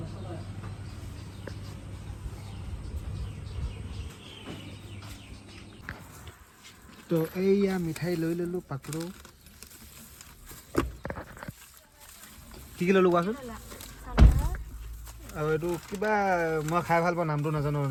তো এইয়া মিঠাই লৈ ল'লোঁ পাকৰো কি ল'লোঁ কোৱাচোন আৰু এইটো কিবা মই খাই ভাল পাওঁ নামটো নাজানো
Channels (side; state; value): both; identical; correlation 1.00